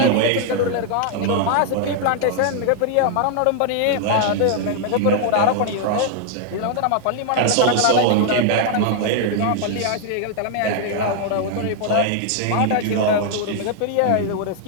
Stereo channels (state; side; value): different; both; correlation 0.00